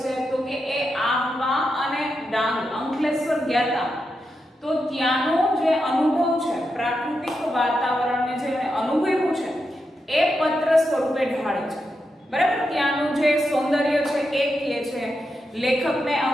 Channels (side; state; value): both; normal; correlation 0.86